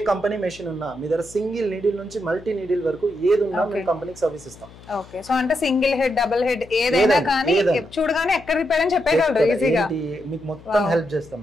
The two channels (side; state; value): left; noise; hum, 21 dB below the sound